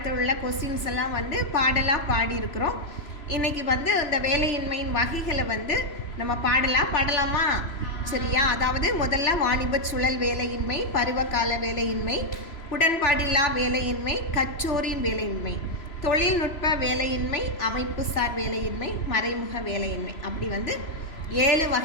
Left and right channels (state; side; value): late; right; 3.0 ms